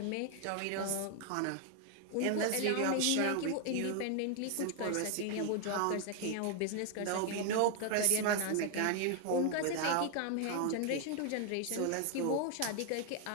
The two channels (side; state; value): both; different; correlation 0.00